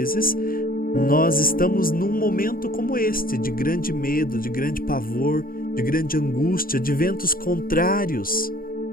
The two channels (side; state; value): right; late; 0.42 ms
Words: nós estamos num momento como este, de grande medo, de grande pavor, de grande angústia, de ventos contrários.